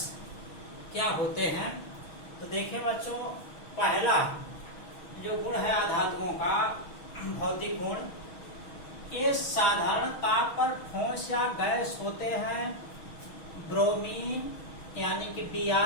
क्या होते हैं। तो देखिए बच्चों, पहला जो गुण है आधातुओं का भौतिक गुण, ये साधारण ताप पर ठोस या गैस होते हैं। ब्रोमीन यानी कि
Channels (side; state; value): right; late; 6.3 ms